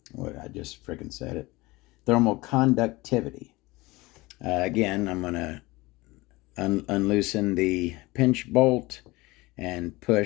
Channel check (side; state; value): right; quieter; 21.7 dB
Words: what I just freaking said it, thermal conductivity. Again, I'm going to unloosen the pinch bolt and